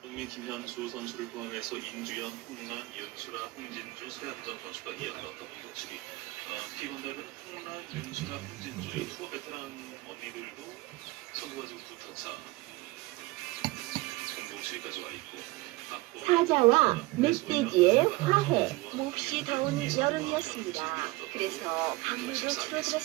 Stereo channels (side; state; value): left; quieter; 21.3 dB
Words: 흥민, 김현수 선수를 포함해서 인주연, 홍란, 윤수라, 홍진주, 서현정 선수가 이어갔던 공격치기. T1대는 홍란, 윤수라, 홍진주의 투어 베테랑 언니들도 선수가 지금 2타차 공격치기까지 와 있고. 사자와 멧돼지의 화해. 몹시 더운 여름이었습니다. 그래서 강물도